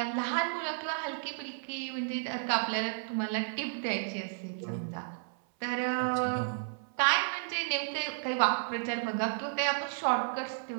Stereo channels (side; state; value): left; silent; 56 dB below the other